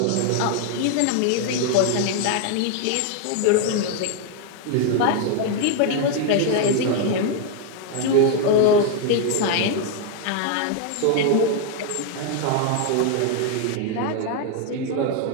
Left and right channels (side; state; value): both; different; correlation 0.01